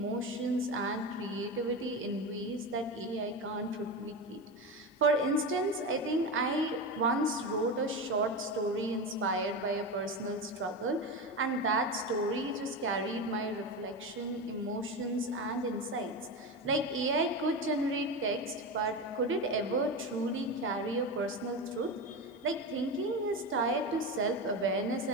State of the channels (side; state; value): both; normal; correlation 0.20